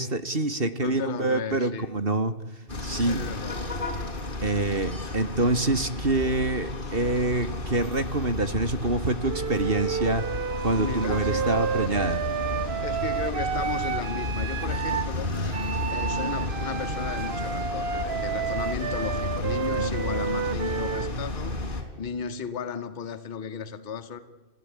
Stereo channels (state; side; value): late; left; 2.7 ms